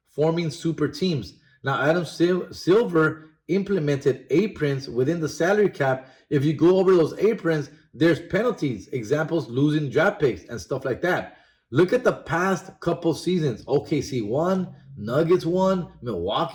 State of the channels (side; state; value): both; identical; correlation 1.00